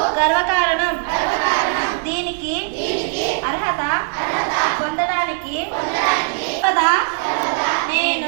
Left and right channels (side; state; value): left; quieter; 39.3 dB